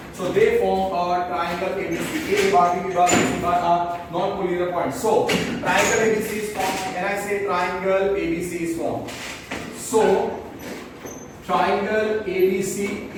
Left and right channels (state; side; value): identical; both; correlation 1.00